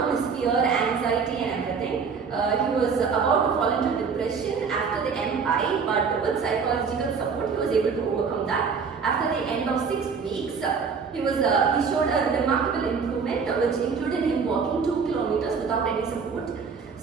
his fear, anxiety and everything. He was about to fall into depression after the MI, but with psychological support he was able to overcome that. After the end of 6 weeks, he showed a remarkable improvement, which included him walking 2 kilometers without any support.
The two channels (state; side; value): quieter; left; 5.6 dB